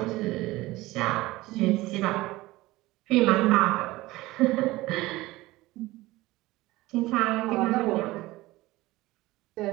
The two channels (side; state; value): left; quieter; 18.9 dB